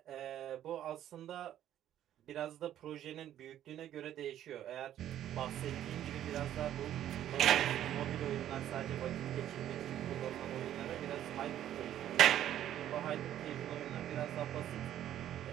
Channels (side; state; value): left; quieter; 11.6 dB